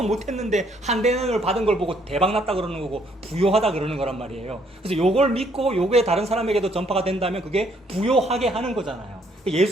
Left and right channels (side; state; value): both; normal; correlation 0.67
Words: 못했는데 한 대는을 받은 걸 보고 대박났다 그러는 거고 부요하다 그러는 거란 말이에요. 그래서 요걸 믿고 요게 다른 사람에게도 전파가 된다면 그게 부요하게 하는 거잖아요.